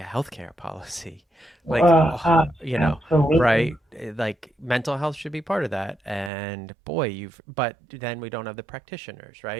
policy, like, Absolutely. right? Like mental health should be part of that. And boy, but then we don't have the practitioners,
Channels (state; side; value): drops out; left; at 6.3 s